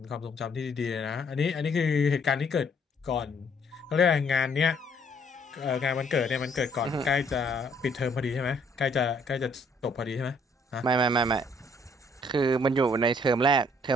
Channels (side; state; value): both; normal; correlation 0.65